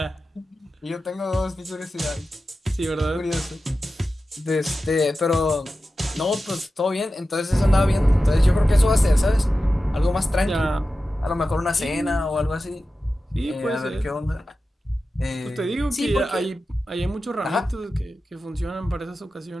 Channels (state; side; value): normal; both; correlation 0.93